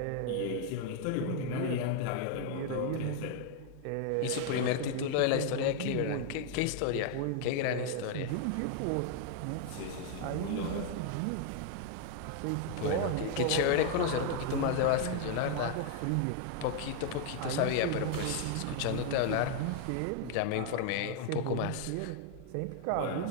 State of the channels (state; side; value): different; both; correlation 0.00